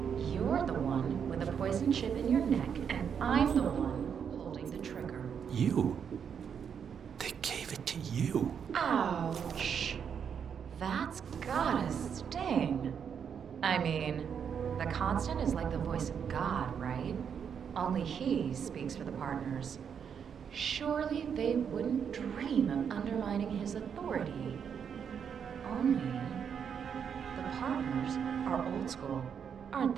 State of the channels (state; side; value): quieter; left; 7.4 dB